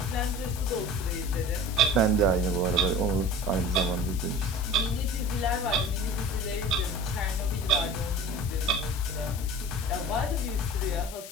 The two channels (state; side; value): noise; left; hiss, 13 dB below the sound